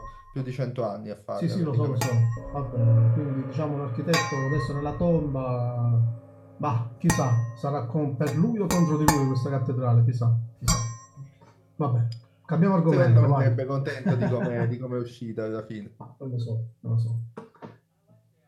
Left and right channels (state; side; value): identical; both; correlation 1.00